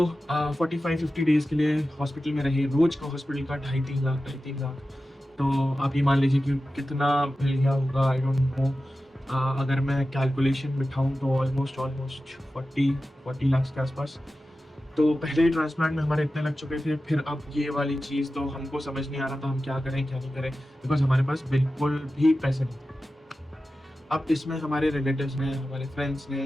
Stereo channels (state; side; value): normal; both; correlation 0.94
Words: 45-50 डेज़ के लिए हॉस्पिटल में रहे। रोज़ का हॉस्पिटल का 2.5-3 लाख। तो आप ये मान लीजिए कि कितना मिल गया होगा, आई डोंट नो। अगर मैं कैलकुलेशन बिठाऊँ तो ऑलमोस्ट 40 लाख के आसपास। तो पहले ही ट्रांसप्लांट में हमारे इतने लग चुके थे, फिर अब ये वाली चीज़ तो हमको समझ नहीं आ रहा था हम क्या करें क्या नहीं करें, बिकॉज हमारे पास बिल्कुल भी पैसे नहीं थे। अब इसमें हमारे रिलेटिव्स ने, हमारे फ्रेंड्स ने,